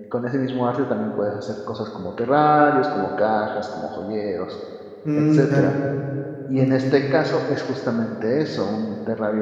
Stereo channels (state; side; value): identical; both; correlation 1.00